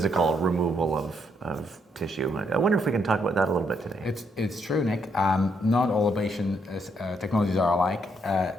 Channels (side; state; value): both; normal; correlation 0.74